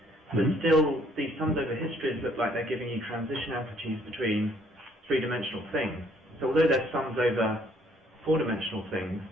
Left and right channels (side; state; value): both; normal; correlation 0.64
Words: But still, these sums over histories look like they're giving you transition amplitudes between three-dimensional things. So although they're sums over four-dimensional things,